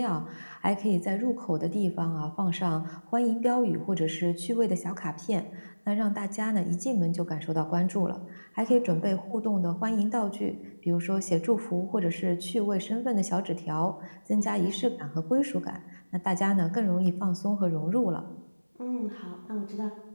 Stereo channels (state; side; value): inverted; both; correlation -1.00